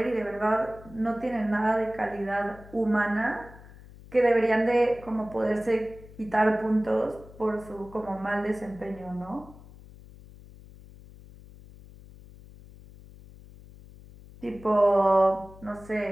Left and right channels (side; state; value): left; noise; hum, 20 dB below the sound